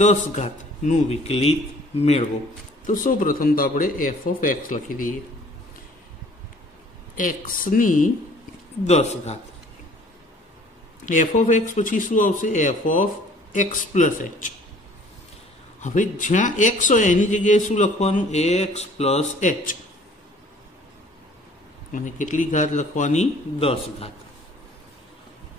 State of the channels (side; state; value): both; normal; correlation 0.54